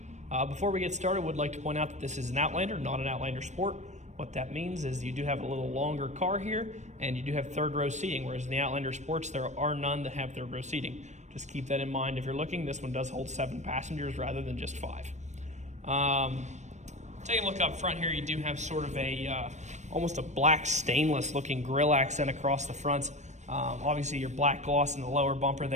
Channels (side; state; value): left; late; 0.34 ms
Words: Before we get started, I would like to point out that this is an Outlander, not an Outlander Sport. What that means is you do have a little longer car here, and you do have third row seating, whereas in the Outlander Sports, there are none that have third row seating. Just keep that in mind if you're looking. This one does hold 7 passengers rather than just 5. Taking a look up front here, you do have sort of a almost a black stainless looking grille accent across the front. Obviously your black gloss in the lower bumper